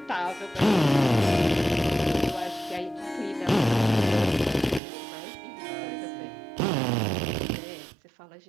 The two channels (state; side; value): drops out; left; at 4.8 s